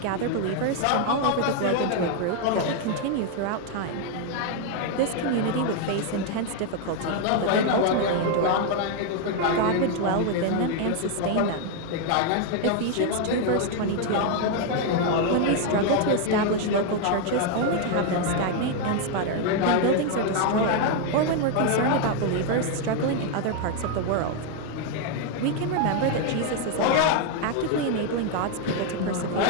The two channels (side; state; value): both; different; correlation 0.01